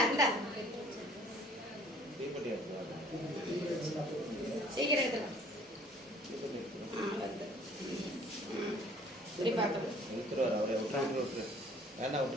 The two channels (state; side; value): normal; both; correlation 0.55